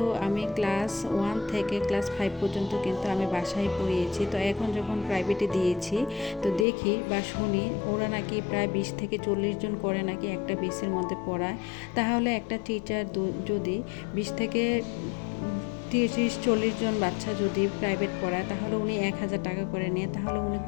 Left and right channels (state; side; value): drops out; right; at 6.7 s